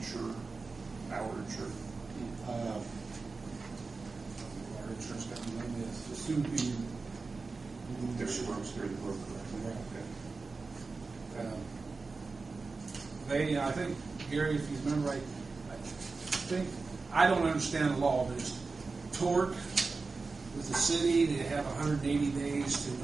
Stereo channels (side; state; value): left; quieter; 4.1 dB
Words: Our insurer? Our insurance company name is the soon be. There's works through the broker. Okay. They, I think, Gary, if you remember right, I don't understand the law, but it's tort with the city. They have 180 days to